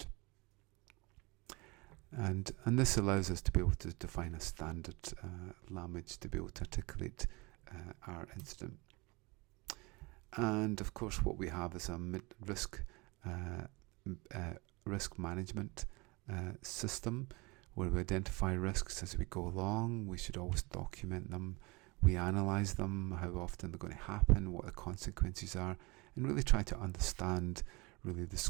And this allows us to be able to define a standard language to be able to articulate our incident. And of course what we have is a risk management system where we identify risks as we go along. We should always document them. We analyse them, how often they're going to happen, what the consequences are, and really try to understand really the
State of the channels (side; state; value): left; quieter; 25.7 dB